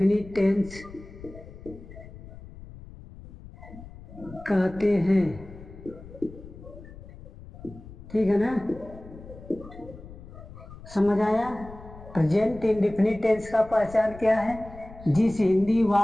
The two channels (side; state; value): left; noise; rumble, 17 dB below the sound